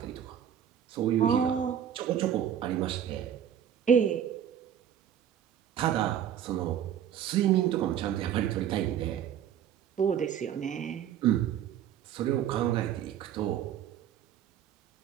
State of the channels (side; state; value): left; quieter; 9.7 dB